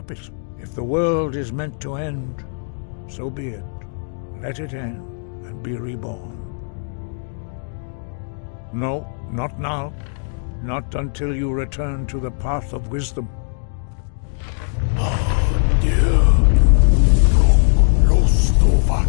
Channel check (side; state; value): right; silent; digital silence